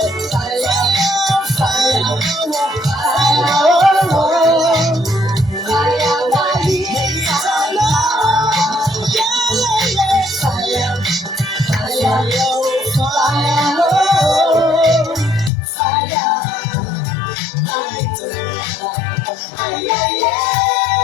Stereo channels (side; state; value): right; drops out; at 15.5 s